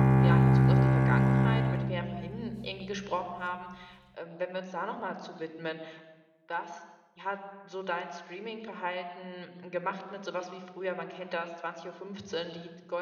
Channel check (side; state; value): both; identical; correlation 1.00